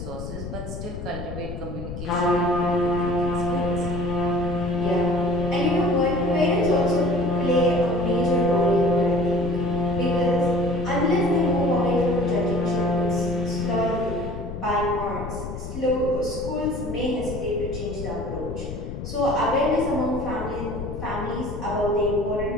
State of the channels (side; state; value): left; noise; rumble, 8 dB below the sound